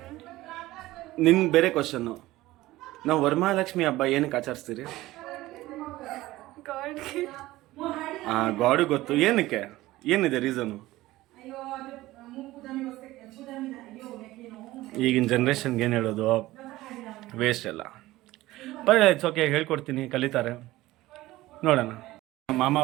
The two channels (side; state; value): left; quieter; 17.4 dB